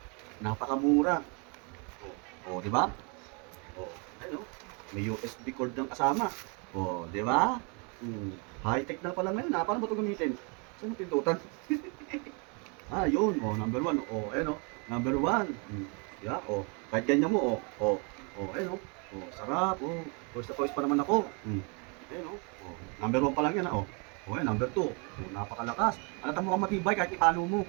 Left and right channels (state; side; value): quieter; left; 34.1 dB